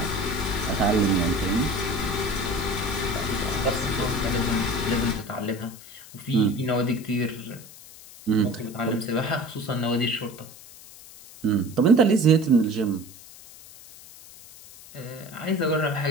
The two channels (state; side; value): noise; left; hiss, 19 dB below the sound